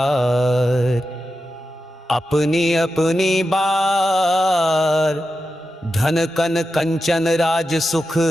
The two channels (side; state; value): both; normal; correlation 0.90